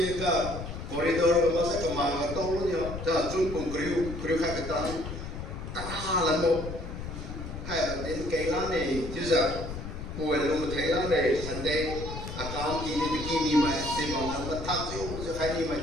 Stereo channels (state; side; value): noise; left; rumble, 8 dB below the sound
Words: ka corridor ko sa kamanga tolo niya. Ta sun kung kriu ka katan ta lan mo hay đến cái lá này chứ giờ buổi luôn thấy lá này sẵn đây account kini bikini mà tìm bằng anh ta thắc chứ khai đi mà